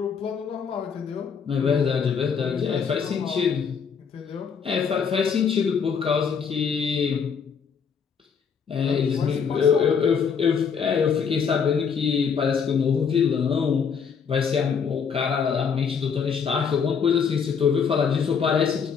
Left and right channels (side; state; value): right; quieter; 6.5 dB